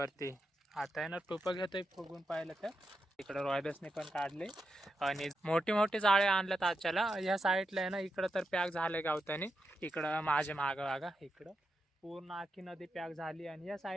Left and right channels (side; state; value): both; normal; correlation 0.85